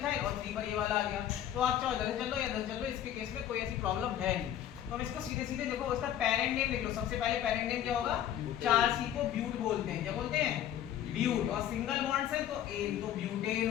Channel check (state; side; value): quieter; right; 10.9 dB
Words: और 3 पर ये वाला आ गया। तो आप चाहो इधर से चल लो या इधर से चल लो, इसके केस में कोई ऐसी प्रॉब्लम है नहीं। तो हम इसको सीधे सीधे देखो, उसका पेरेंट नेम लिख लो। सबसे पहले पेरेंट नेम क्या होगा? 4C को ब्यूट बोलते हैं। क्या बोलते हैं? ब्यूट। और सिंगल बॉन्ड से तो एन, तो ब्यूटेन